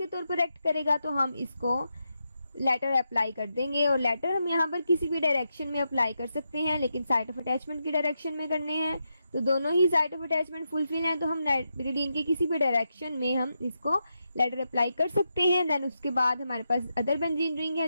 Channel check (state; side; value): inverted; both; correlation -0.85